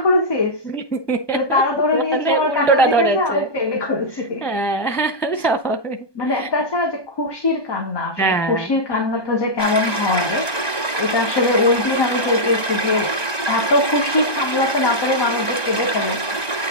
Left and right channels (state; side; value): late; right; 1.2 ms